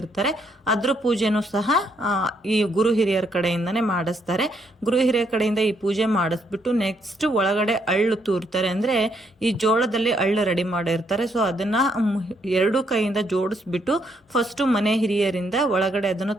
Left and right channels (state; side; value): normal; both; correlation 0.73